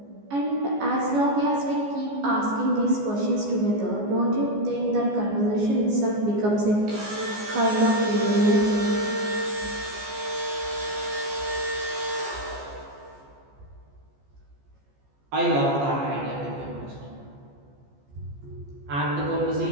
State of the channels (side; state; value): left; late; 14 ms